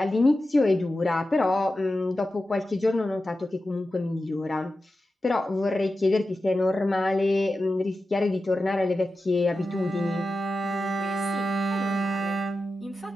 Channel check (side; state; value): both; normal; correlation 0.92